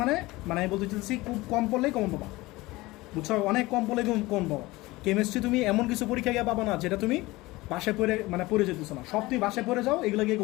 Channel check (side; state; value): right; quieter; 20.4 dB